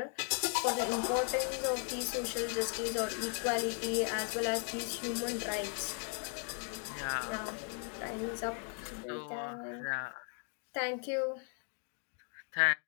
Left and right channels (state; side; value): quieter; right; 38.9 dB